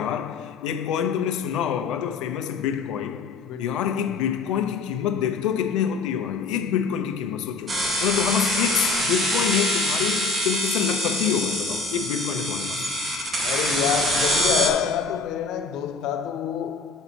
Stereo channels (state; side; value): quieter; right; 4.2 dB